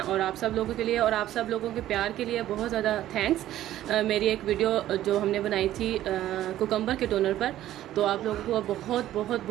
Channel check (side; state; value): left; quieter; 13.3 dB